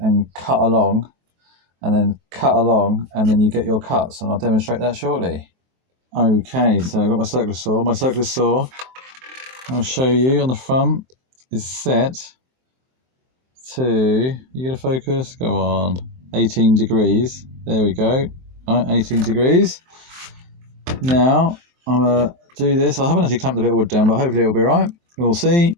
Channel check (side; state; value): left; late; 23 ms